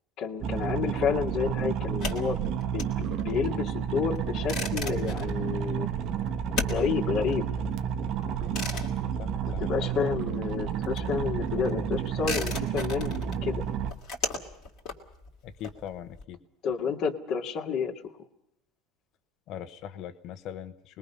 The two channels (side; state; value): both; normal; correlation 0.48